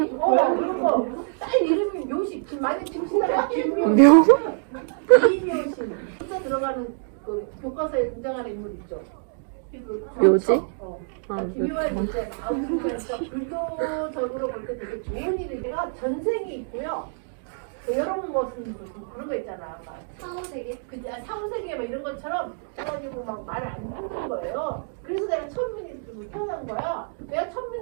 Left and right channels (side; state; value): left; silent; digital silence